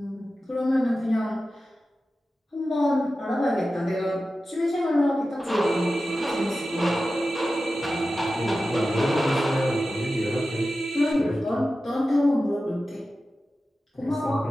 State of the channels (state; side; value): normal; both; correlation 0.93